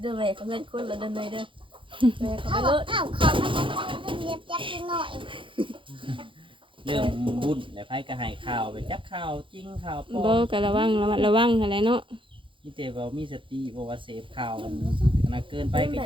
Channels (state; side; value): late; left; 0.25 ms